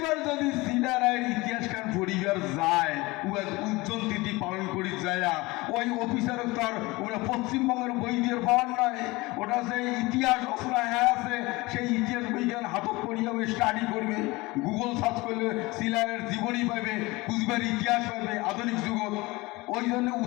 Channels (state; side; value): quieter; right; 22.2 dB